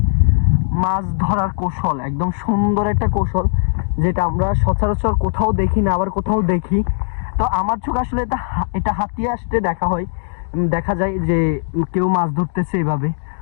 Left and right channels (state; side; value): silent; right; digital silence